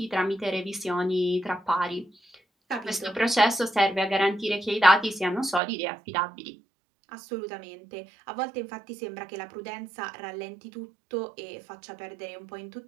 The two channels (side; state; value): left; drops out; at 5.6 s